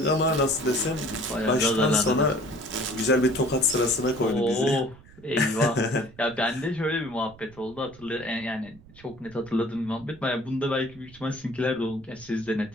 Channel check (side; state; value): right; noise; rumble, 23 dB below the sound